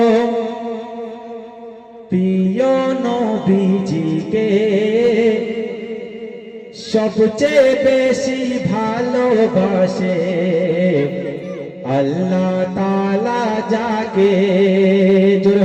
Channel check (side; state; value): both; identical; correlation 1.00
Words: প্রিয় নবীজিকে, সবচেয়ে বেশি ভালোবাসে আল্লাহ তাআলা যাকে। জোরে